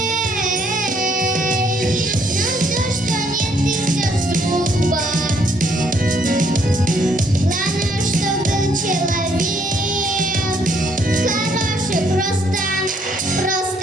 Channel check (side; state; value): both; normal; correlation 0.68